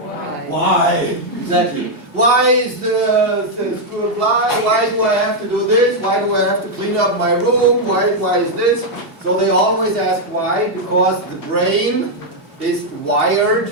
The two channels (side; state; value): left; late; 2.8 ms